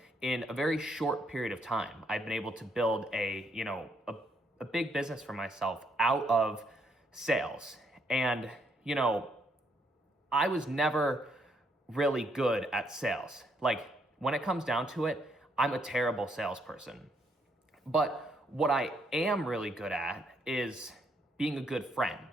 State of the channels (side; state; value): both; normal; correlation 0.73